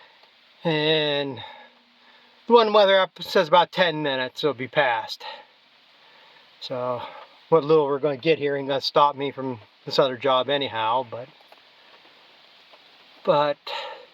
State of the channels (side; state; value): both; identical; correlation 1.00